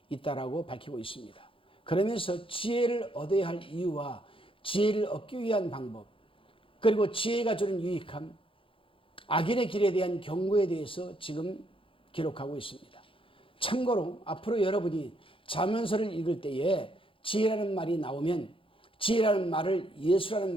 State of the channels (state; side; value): late; right; 0.26 ms